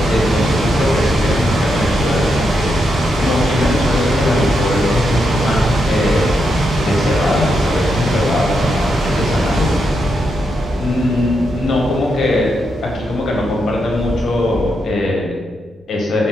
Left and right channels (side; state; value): both; normal; correlation 0.83